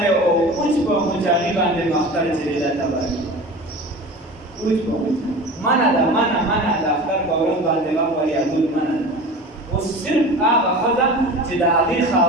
او اوس په مجاهي باندې مختار چې دا تباه اوس په منع د اختر په ورځ باندې غم وریادول منع ده اوس صرف هغه ښځه چې د هغې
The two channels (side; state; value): both; normal; correlation 0.35